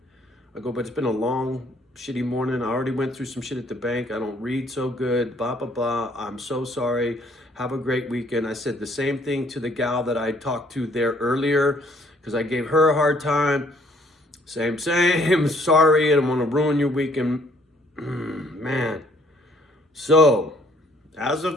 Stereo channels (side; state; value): both; normal; correlation 0.63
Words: I go, but it's been a long, shitty morning. I already went through some shit at the bank. I don't read so good, blah, blah, blah. I'm so sorry. Have a great weekend. I said the same thing to the gal that I talked to there earlier because I gave her a hard time. Same. Sorry, I don't want to ruin your weekend. Man. So, as